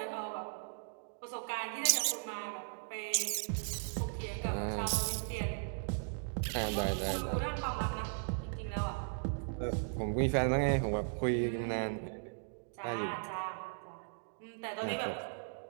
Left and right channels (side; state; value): left; silent; digital silence